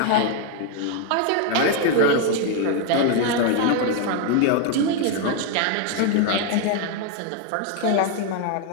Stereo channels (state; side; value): different; both; correlation 0.00